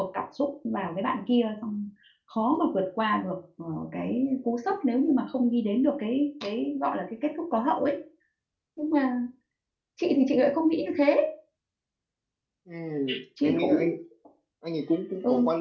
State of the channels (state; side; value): identical; both; correlation 1.00